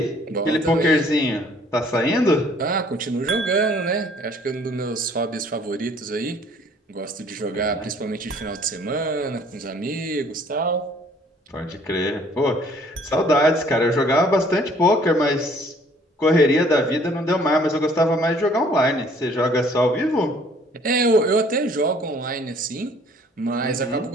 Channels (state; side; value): normal; both; correlation 0.58